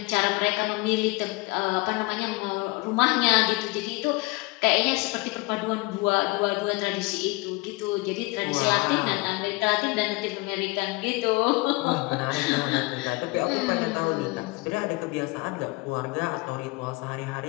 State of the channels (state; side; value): quieter; right; 24.7 dB